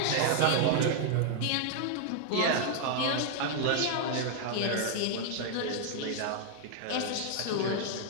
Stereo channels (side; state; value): both; different; correlation 0.00